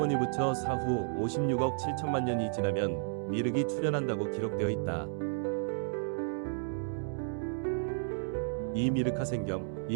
부처 사후 56억 7천만 년이 지나면 미륵이 출현한다고 기록되어 있다. 2미륵하생경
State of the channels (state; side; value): silent; left; digital silence